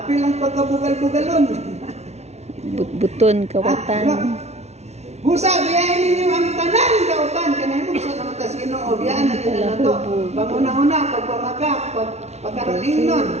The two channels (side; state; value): left; late; 0.31 ms